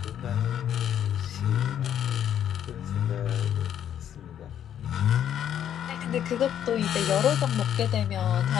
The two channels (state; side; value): quieter; right; 9.9 dB